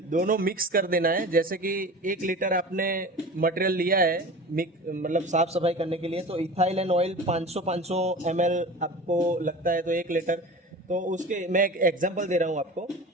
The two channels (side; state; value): both; normal; correlation 0.35